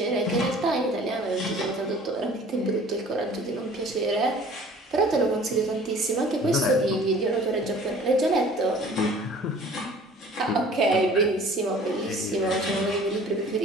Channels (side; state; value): both; normal; correlation 0.49